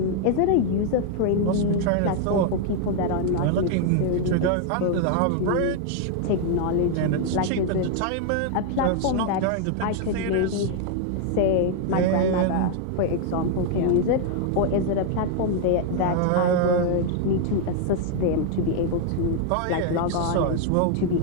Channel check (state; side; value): different; both; correlation 0.00